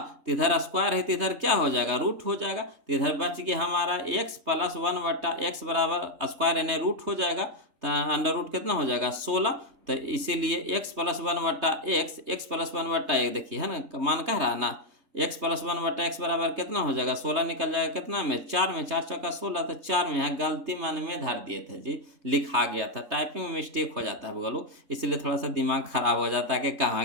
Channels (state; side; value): late; left; 3.2 ms